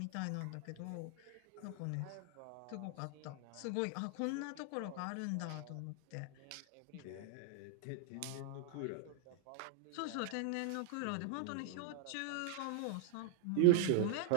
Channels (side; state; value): both; different; correlation 0.00